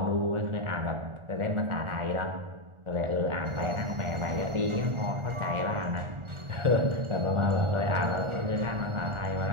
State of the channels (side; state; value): left; late; 1.4 ms